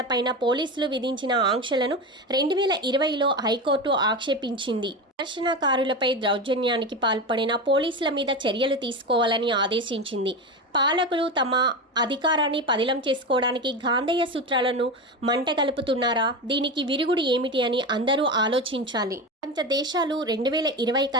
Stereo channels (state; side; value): normal; both; correlation 0.21